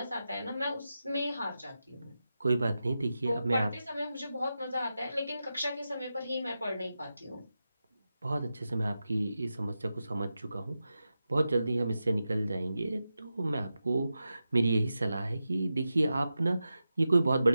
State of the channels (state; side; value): inverted; both; correlation -0.91